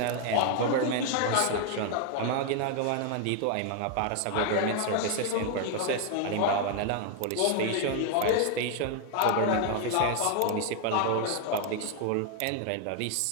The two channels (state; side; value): different; both; correlation 0.00